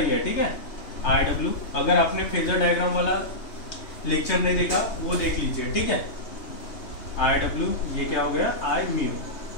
है। ठीक है, IW। अगर आपने फेजर डायग्राम वाला लेक्चर नहीं देखा वो देख लीजिए। ठीक है, IW ये क्या हो गया, I म्यू।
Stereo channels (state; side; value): late; right; 3.2 ms